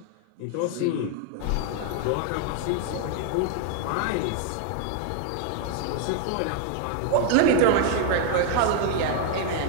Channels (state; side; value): different; both; correlation 0.00